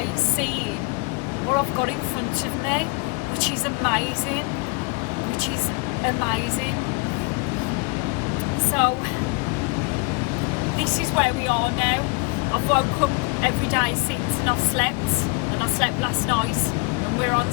seeing what I've got in front of me, which is amazing, So this is where we are now. I've woke up every day since, and I've slept, and I slept last night, and we're on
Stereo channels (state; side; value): quieter; right; 28.9 dB